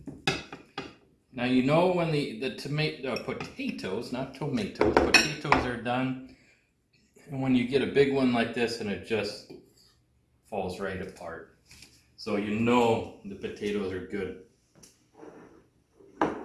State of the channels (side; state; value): both; identical; correlation 1.00